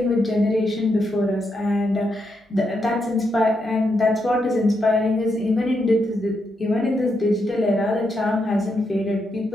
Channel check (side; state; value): both; normal; correlation 0.81